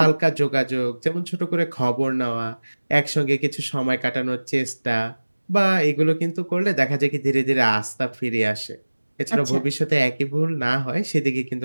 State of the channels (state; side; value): inverted; both; correlation -1.00